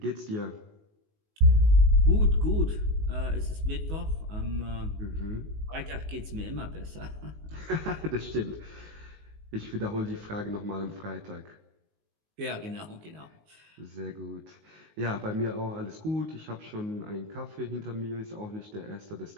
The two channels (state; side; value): late; left; 19 ms